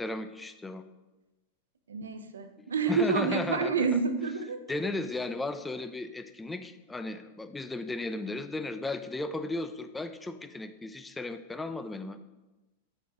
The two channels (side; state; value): both; normal; correlation 0.14